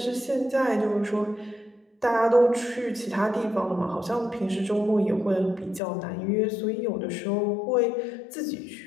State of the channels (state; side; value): drops out; right; at 5.8 s